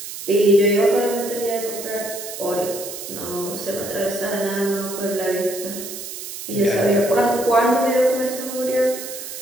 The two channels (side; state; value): right; noise; hiss, 9 dB below the sound